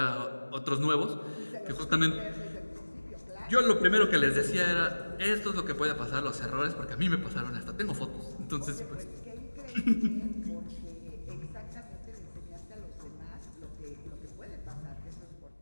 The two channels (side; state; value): both; inverted; correlation -1.00